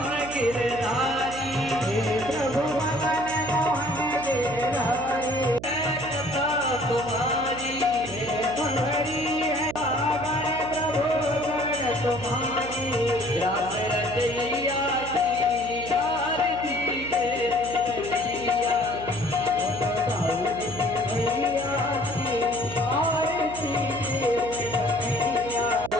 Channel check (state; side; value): noise; right; hum, 12 dB below the sound